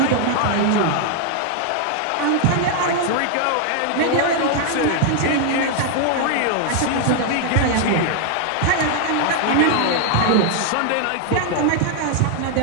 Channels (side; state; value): both; different; correlation 0.00